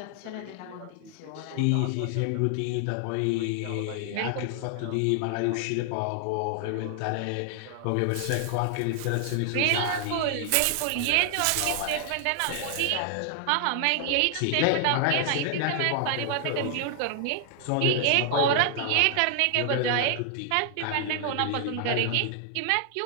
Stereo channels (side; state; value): both; different; correlation 0.00